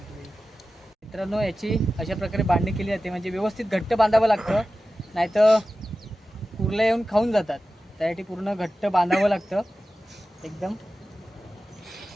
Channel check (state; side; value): normal; both; correlation 0.94